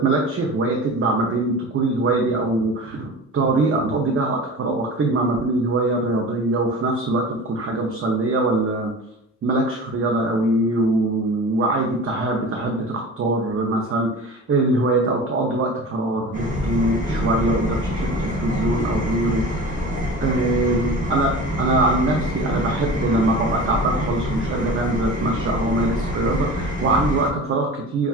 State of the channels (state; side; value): normal; both; correlation 0.35